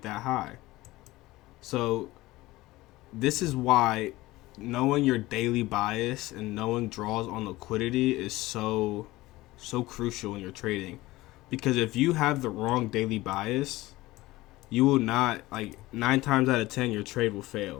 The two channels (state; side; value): quieter; right; 18.6 dB